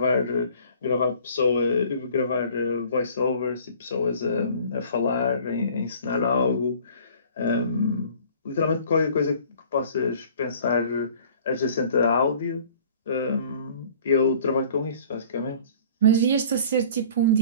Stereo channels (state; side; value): inverted; both; correlation -0.50